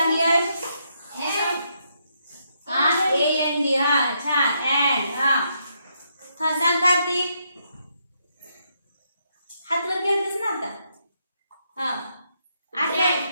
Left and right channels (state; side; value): inverted; both; correlation -0.77